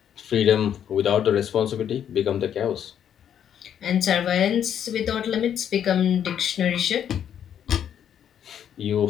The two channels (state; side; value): quieter; right; 9.3 dB